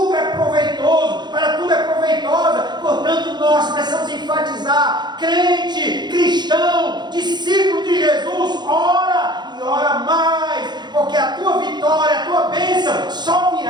é proveitoso, para tudo é proveitosa. Portanto, nós precisamos enfatizar: crente, cristão, discípulo de Jesus, ora e ora mais, porque a tua vitória, a tua bênção só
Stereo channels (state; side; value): late; left; 0.21 ms